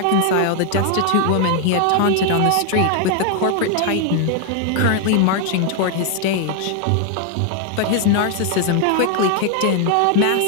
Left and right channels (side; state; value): both; different; correlation 0.00